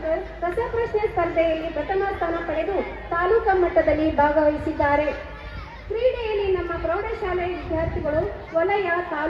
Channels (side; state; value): both; identical; correlation 1.00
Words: ರಸಪ್ರಶ್ನೆ ಸ್ಪರ್ಧೆಯಲ್ಲಿ ಪ್ರಥಮ ಸ್ಥಾನ ಪಡೆದು ತಾಲೂಕಾ ಮಟ್ಟದಲ್ಲಿ ಭಾಗವಹಿಸಿದ್ದಾರೆ. ಕ್ರೀಡೆಯಲ್ಲಿ ನಮ್ಮ ಪ್ರೌಢಶಾಲೆ ವಿದ್ಯಾರ್ಥಿಗಳು ವಲಯ,